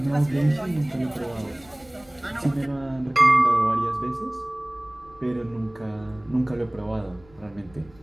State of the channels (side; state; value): left; noise; rumble, 26 dB below the sound